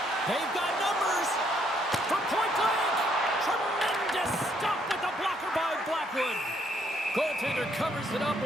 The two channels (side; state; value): both; normal; correlation 0.70